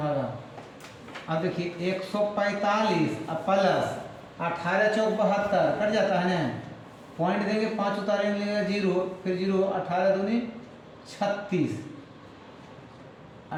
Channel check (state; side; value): identical; both; correlation 1.00